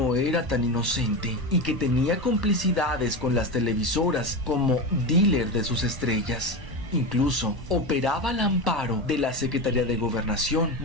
era tan inocente y que tenía complicidades con las televisoras como dealer de sus estrellas. Incluso operaba al amparo de la Secretaría de Gobernación,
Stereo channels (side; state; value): left; late; 1.1 ms